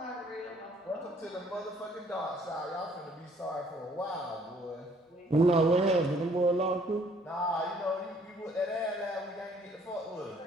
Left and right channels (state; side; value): normal; both; correlation 0.61